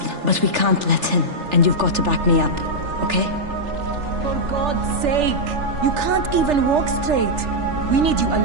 but we can't let him, and you've got to back me up, okay? For God's sake! You can't even walk straight! We need you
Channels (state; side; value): late; left; 3.4 ms